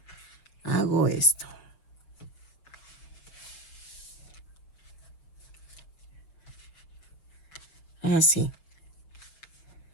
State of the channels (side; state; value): right; late; 6.2 ms